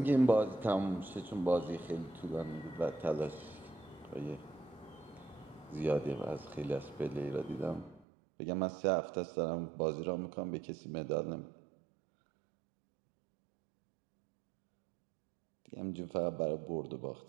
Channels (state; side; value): drops out; left; at 8.1 s